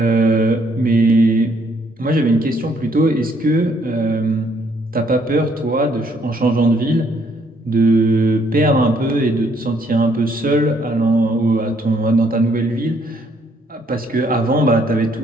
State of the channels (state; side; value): normal; both; correlation 0.68